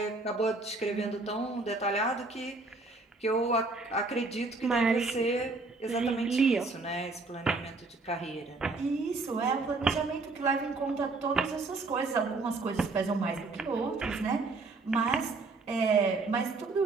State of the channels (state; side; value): quieter; left; 3.6 dB